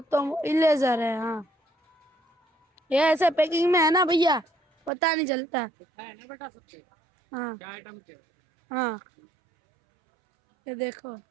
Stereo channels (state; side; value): drops out; left; at 4.9 s